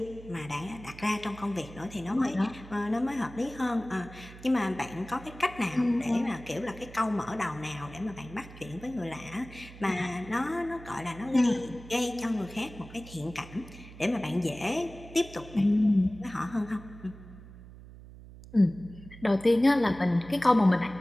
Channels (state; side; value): noise; right; hum, 17 dB below the sound